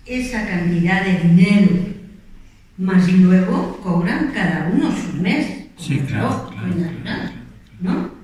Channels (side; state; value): both; identical; correlation 1.00